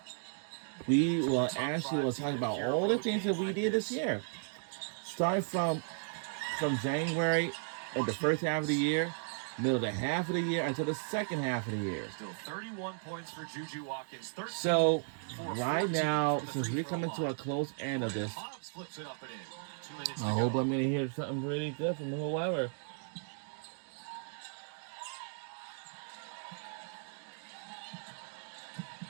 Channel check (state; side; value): silent; left; digital silence